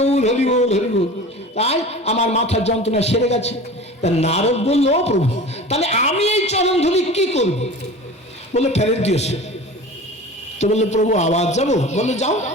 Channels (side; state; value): both; normal; correlation 0.37